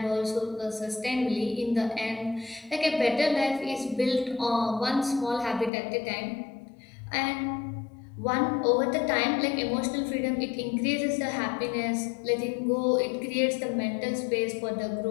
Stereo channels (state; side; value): drops out; right; at 5.7 s